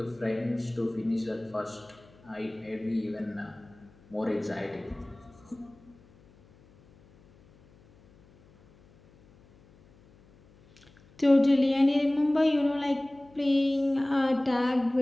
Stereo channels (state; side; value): noise; left; hum, 28 dB below the sound